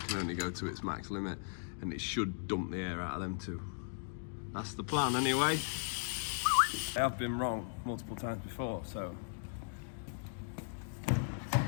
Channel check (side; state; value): right; silent; digital silence